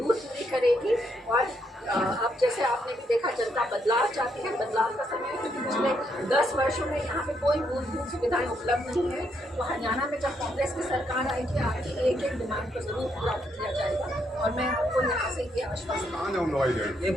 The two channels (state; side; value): normal; both; correlation 0.76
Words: पूरी करेगी। और आप जैसे आपने भी देखा जनता बदलाव चाहती है, बदलाव का समय है, क्योंकि पिछले 10 वर्षों में यहाँ पे कोई मूलभूत सुविधाएं उपलब्ध नहीं है। तो हरियाणा में जब कांग्रेस की सरकार आएगी, आपकी एक एक डिमांड को जरूर पूरा किया जाएगा। और मैं आपको यहाँ से ये आश्वासन ये